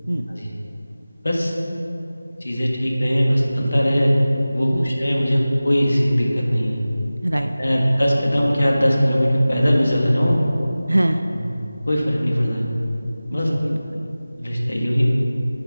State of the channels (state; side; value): inverted; both; correlation -0.97